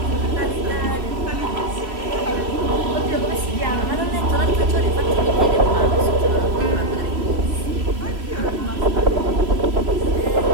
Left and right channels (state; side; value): late; left; 3.0 ms